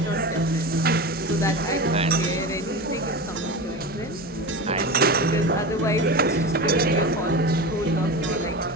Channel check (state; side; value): normal; both; correlation 0.26